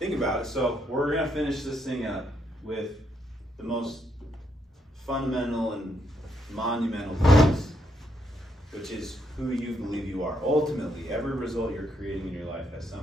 about it. So we're gonna finish this thing up with the most fundamental and monumental piece, which is who you believe you are. Ultimately, every result you're creating in your life has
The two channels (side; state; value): both; normal; correlation 0.76